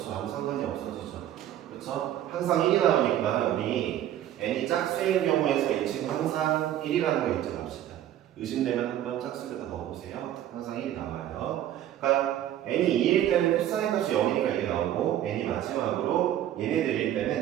아무 상관이 없어지죠. 그렇죠. 항상 1이 나오니까 우리 n이 짝수인 경우에서 이 친구 항상 1이라는 거 잊지 맙시다. 의심되면 한번 짝수에다 넣어보세요. 항상 1이 나와요. 그러니까 n이 2일 때는 코사인 값이 0이니까 이게 나오고 n이 마지막으로 얘네들일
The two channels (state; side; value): quieter; left; 11.9 dB